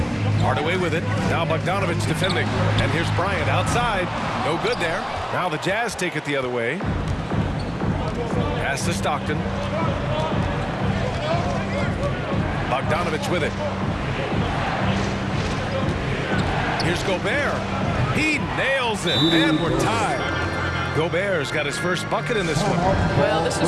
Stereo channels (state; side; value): identical; both; correlation 1.00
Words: Hardaway with it. Now Bogdanovich defending. And here's Bryant outside. No good there. Now the Jazz take it the other way. Pass to Stockton. Bogdanovich with it. Here's Gobert. He nails it. And we're tied. Gobert's got his first bucket in this one. Well, this